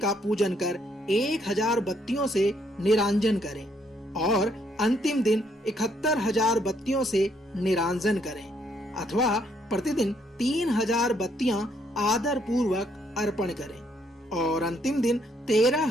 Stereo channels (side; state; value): both; normal; correlation 0.70